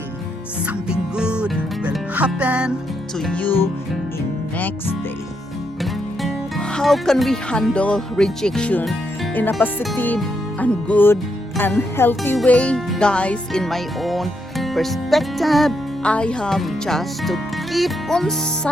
Something good will happen to you in next day. How can we handle rejection in a positive and good and healthy way? Guys, in my own perspective, I have just to keep on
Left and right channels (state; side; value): normal; both; correlation 0.79